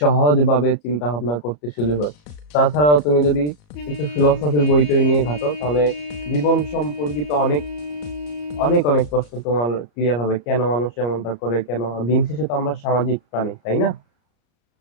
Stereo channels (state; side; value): late; right; 34 ms